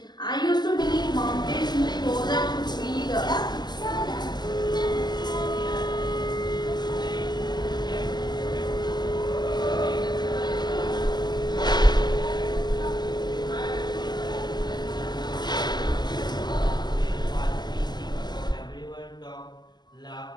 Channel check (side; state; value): right; late; 0.21 ms